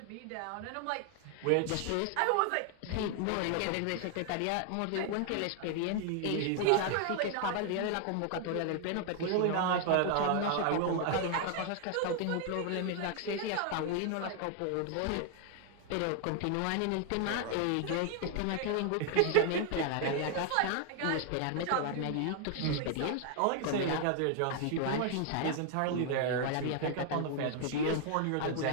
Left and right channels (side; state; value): both; different; correlation 0.00